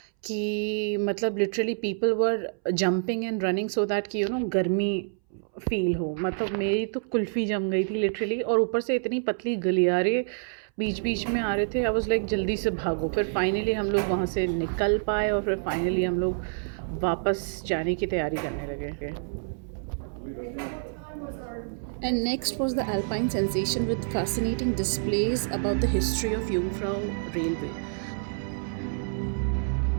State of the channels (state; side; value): silent; left; 60 dB below the other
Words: कि मतलब literally people were jumping and running so that कि गर्मी फील हो। मतलब मेरी तो कुल्फ़ी जम गई थी लिटरली, और ऊपर से इतनी पतली गलियारे बीच बीच में आ रहे थे। आई वाज लाइक जल्दी से भागो। फिर फाइनली हम लोग वहाँ से निकल पाए और फिर फाइनली हम लोग वापस जाने की तैयारी करने लगे। And next was the Alpine sensation with fascinating displays about the history of Jungfrau Railway.